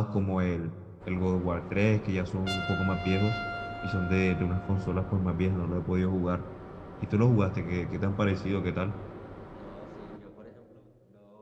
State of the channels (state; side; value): identical; both; correlation 1.00